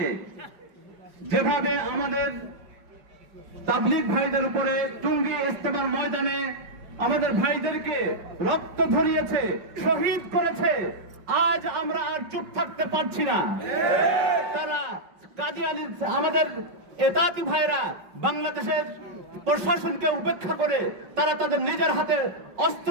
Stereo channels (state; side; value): late; left; 5.3 ms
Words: যেভাবে আমাদের তাবলীগ ভাইদের উপরে টুঙ্গি ইস্তেমার ময়দানে আমাদের ভাইদেরকে রক্ত ঝরিয়েছে, শহীদ করেছে, আজ আমরা আর চুপ থাকতে পারছি না। তারা কাদিয়ানী আমাদের ইতাআতী ভাইরা বাংলাদেশের প্রশাসনকে উপেক্ষা করে তারা তাদের নিজের হাতে অস্ত্র